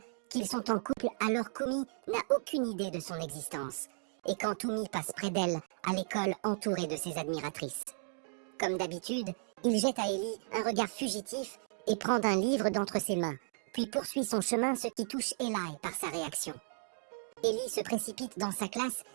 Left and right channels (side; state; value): left; silent; digital silence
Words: qu'ils sont en couple alors qu'Umi n'a aucune idée de son existence. Et quand Umi passe près d'elle, à l'école entourée de ses admiratrices. Comme d'habitude, il jette à Ellie un regard fugitif et prend un livre d'entre ses mains, puis poursuit son chemin, ce qui touche Eli par sa réaction. Ellie se précipite dans sa classe